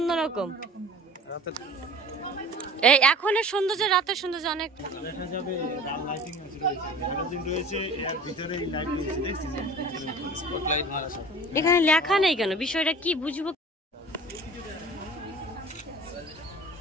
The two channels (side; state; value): both; normal; correlation 0.42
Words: এই এখনের সৌন্দর্য রাতের সৌন্দর্য অনেক দেখা যাবে লাইটিং রয়েছে এর ভিতরে লাইট রয়েছে দেখছিস স্পটলাইট মারা সব এখানে লেখা নেই কেন বিষয়টা কি বুঝবো